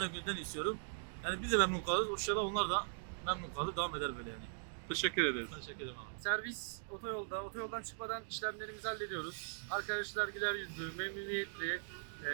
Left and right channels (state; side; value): silent; left; digital silence